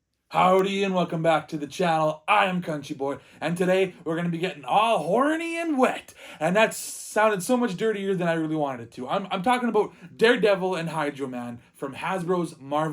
Howdy and welcome back to the channel. I am Country Boy, and today we're going to be getting all horny and wet. And that sounded so much dirtier than I really wanted it to. I'm talking about Daredevil and Hydro Man from Hasbro's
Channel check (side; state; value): both; identical; correlation 1.00